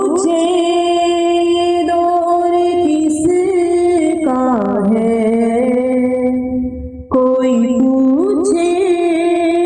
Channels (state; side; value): identical; both; correlation 1.00